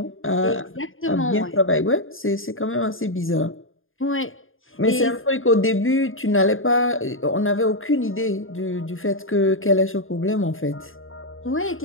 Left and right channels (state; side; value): late; right; 0.59 ms